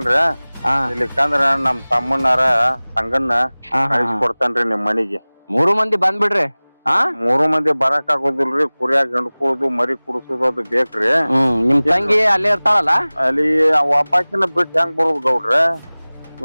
ಇಲ್ಲಿಕಂದ್ರ ನಮ್ ತಮ್ಮನಾರ ಸಂಗಣ್ಣ ಕಳಿಸ್ಕೊಡ್ತೇನ್ರಿ ನಿಮ್ ಮನಿಗೆ 3 ಮಂದಿ ಬಂದ್ಬಿಡ್ರಿ 3 ಮಂದಿ ಬರಾಕ್ ಆಗೋದಿಲ್ರಿ ಕುರಿಯಾಗ ಗಂಡ್ಕೊಳದು ಮರಿ ಕುಡಿಸೋದು ಅದು ಬೇಕ್ರಿ ನಿಮ್ ತಂಗಿ ಅಲ್ಲೇ ಇರ್ತಾಳಲ್ಲ ಅಲ್ಲಿ ಒಬ್ಬಾಕಿನ ಬಿಟ್ಟು ಹೆಂಗ್ ಬರೋದು ಗೌಡ್ರ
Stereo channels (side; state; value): both; inverted; correlation -1.00